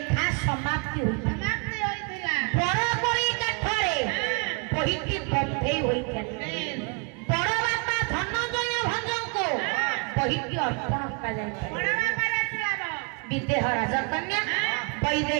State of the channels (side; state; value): left; quieter; 34.6 dB